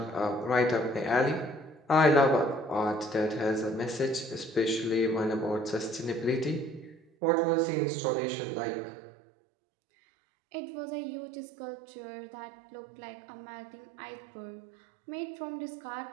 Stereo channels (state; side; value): drops out; left; at 7.0 s